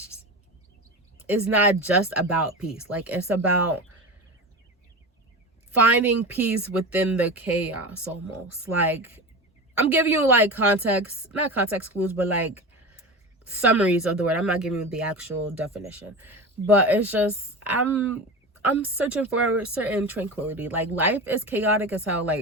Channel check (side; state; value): both; normal; correlation 0.27